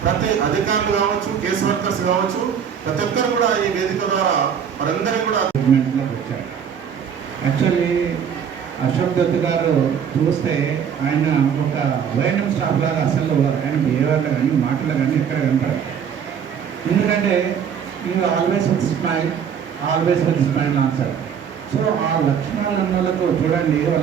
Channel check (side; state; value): left; quieter; 7.7 dB